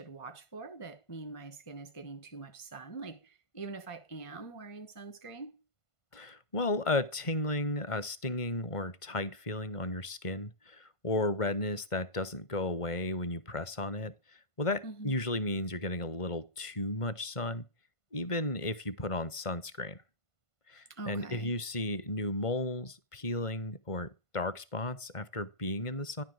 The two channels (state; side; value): late; right; 1.5 ms